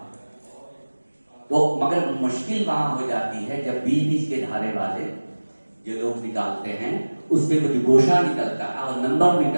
تو مگر مشکل وہاں ہو جاتی ہے جب بیچ بیچ کے دھارے والے جو لوگ نکالتے ہیں اس پہ کچھ گوشہ نکلتا ہے اور نمبر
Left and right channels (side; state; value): both; inverted; correlation -1.00